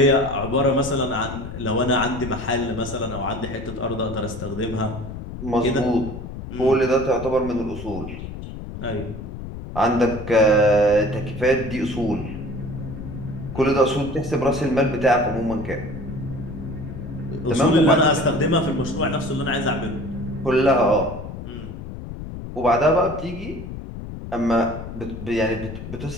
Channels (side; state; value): left; noise; rumble, 9 dB below the sound